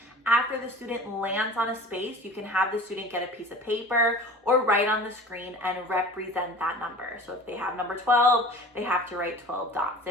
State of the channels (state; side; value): normal; both; correlation 0.41